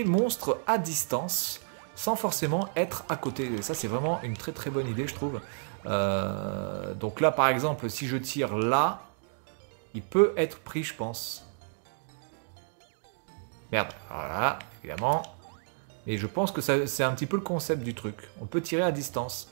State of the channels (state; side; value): silent; left; digital silence